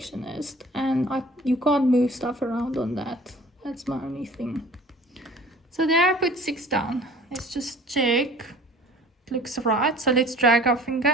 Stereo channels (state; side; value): normal; both; correlation 0.48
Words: And you can't move stuff around on that. That's my only thing. So there I put 6 down. Let's just check. It looks right. So let's drag our